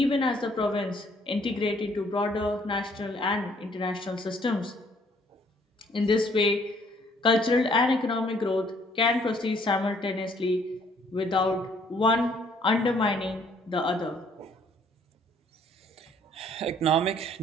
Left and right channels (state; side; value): normal; both; correlation 0.62